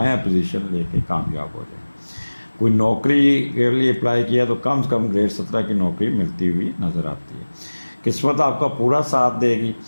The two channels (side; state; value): both; inverted; correlation -1.00